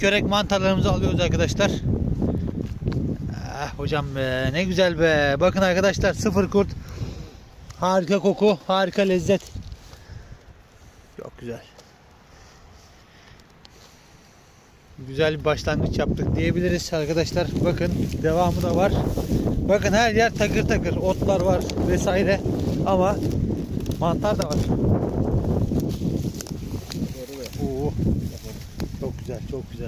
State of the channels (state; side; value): identical; both; correlation 1.00